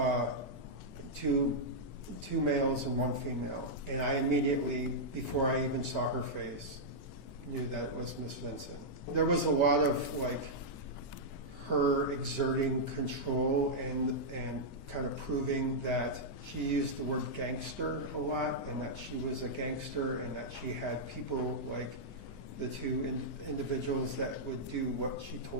two males and 1 female. And I immediately, before I even saw her face, knew that it was Miss Vincent. There was a lot of her exerting control and kind of proving that she used the word gangster a lot, and that she was a gangster, and that she had people like the 2 individuals that would do what she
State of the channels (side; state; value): right; late; 16 ms